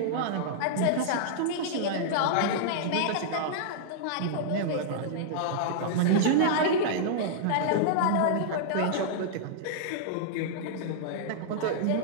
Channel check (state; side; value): different; both; correlation -0.02